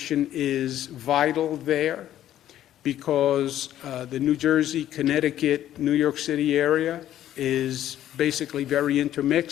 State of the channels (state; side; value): quieter; right; 12.1 dB